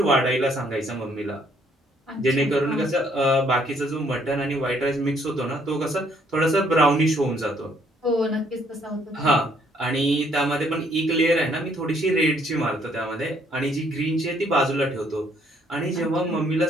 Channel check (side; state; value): both; normal; correlation 0.66